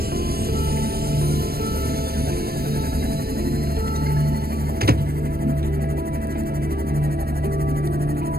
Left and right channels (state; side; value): late; left; 0.44 ms